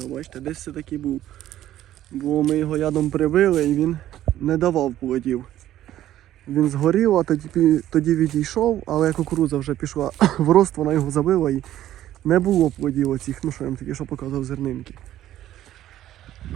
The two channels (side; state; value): left; quieter; 12.9 dB